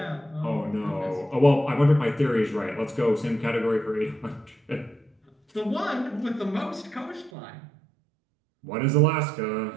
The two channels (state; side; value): drops out; left; at 7.3 s